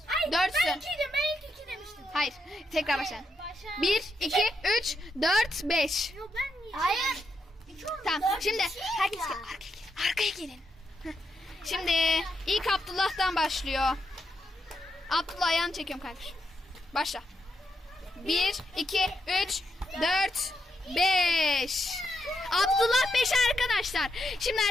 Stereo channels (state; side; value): normal; both; correlation 0.82